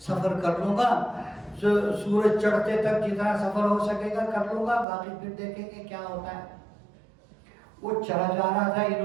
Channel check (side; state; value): left; drops out; at 4.9 s